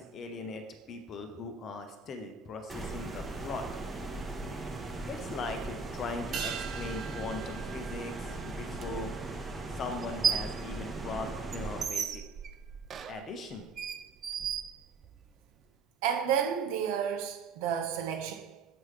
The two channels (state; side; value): quieter; left; 3.7 dB